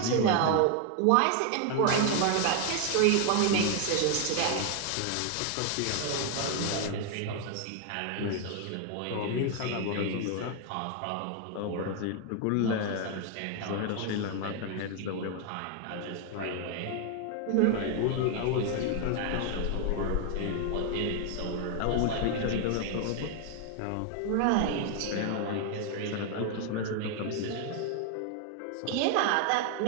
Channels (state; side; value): different; both; correlation 0.00